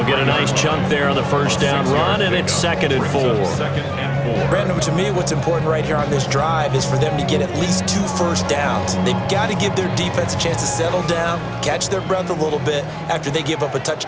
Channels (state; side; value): identical; both; correlation 1.00